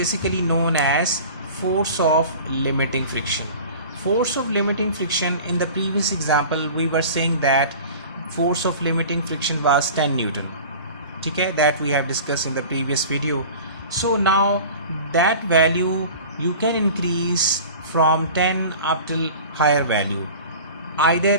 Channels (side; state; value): both; inverted; correlation -0.39